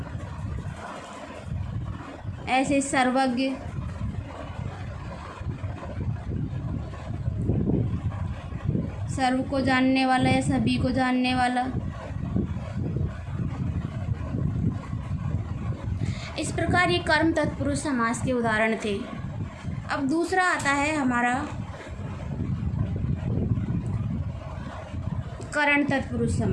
ऐसे सर्वज्ञ, सर्व को जानने वाला या सभी को जानने वाला। इस प्रकार ये कर्म तत्पुरुष समास के उदाहरण थे। अब दूसरा आता है हमारा करण तत्पुरुष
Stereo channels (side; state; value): both; identical; correlation 1.00